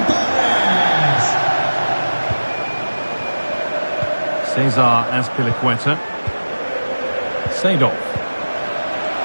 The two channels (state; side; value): inverted; both; correlation -1.00